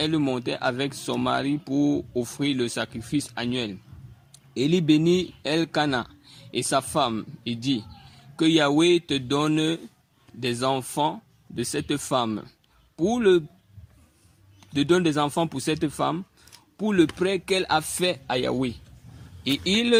montait avec son mari pour offrir le sacrifice annuel. Élie bénit Elkana et sa femme et dit, que Yahweh te donne des enfants de cette femme. Donne des enfants pour cette femme, pour le prêt qu'elle a fait à Yahweh. Et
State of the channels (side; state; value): both; identical; correlation 1.00